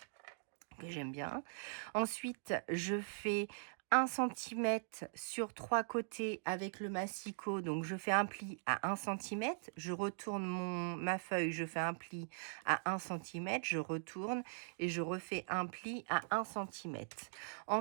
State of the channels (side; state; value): left; silent; digital silence